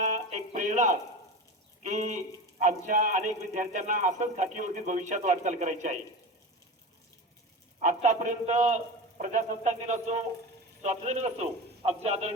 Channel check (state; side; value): normal; both; correlation 0.28